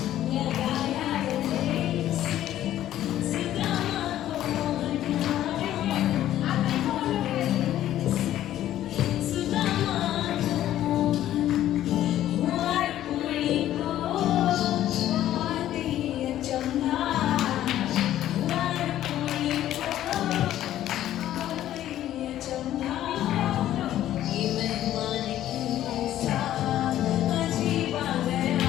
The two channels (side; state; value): right; quieter; 12.6 dB